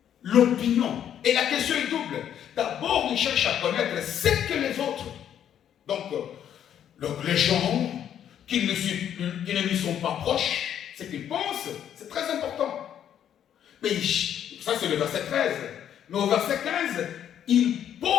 l'opinion. Et la question est double. D'abord, il cherche à connaître ce que les autres. Donc les gens qui ne lui sont pas proches, ce qu'ils pensent, c'est très important. Mais ça, c'est le verset 13. Mais au verset 15, il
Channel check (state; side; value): quieter; right; 9.8 dB